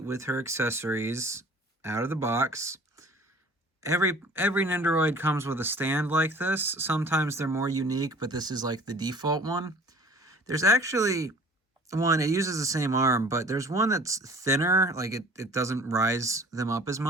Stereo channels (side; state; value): both; normal; correlation 0.48